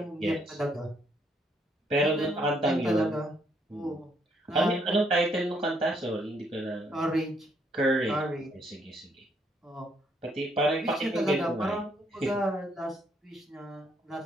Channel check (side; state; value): both; normal; correlation 0.71